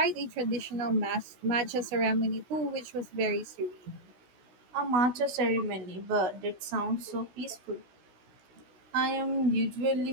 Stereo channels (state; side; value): late; left; 16 ms